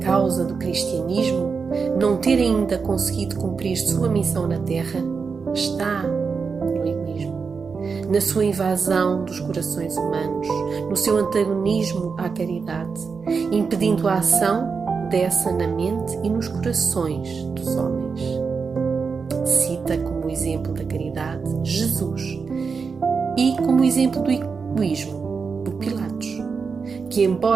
do cristianismo não ter ainda conseguido cumprir sua missão na Terra está no egoísmo, na sua invasão dos corações humanos, no seu antagonismo à caridade, impedindo a ação dessa na mente e nos corações dos homens. Cita como exemplo da caridade Jesus e como exemplo do egoísmo o Pilatos, que,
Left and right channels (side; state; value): left; quieter; 5.3 dB